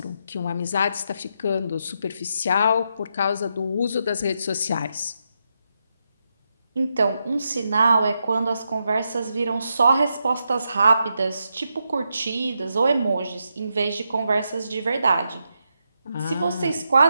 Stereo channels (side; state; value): both; inverted; correlation -0.83